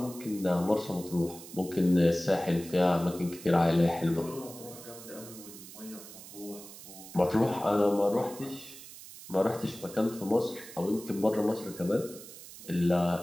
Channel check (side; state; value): right; noise; hiss, 15 dB below the sound